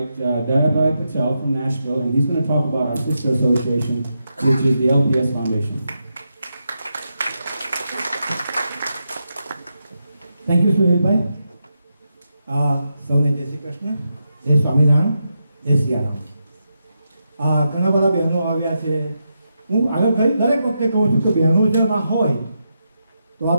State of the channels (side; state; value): both; inverted; correlation -0.85